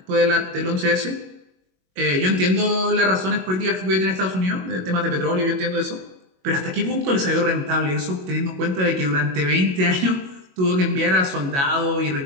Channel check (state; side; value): late; left; 22 ms